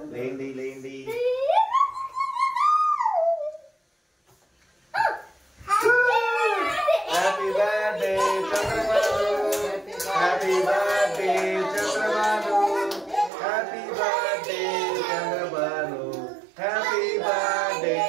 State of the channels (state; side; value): drops out; left; at 13.3 s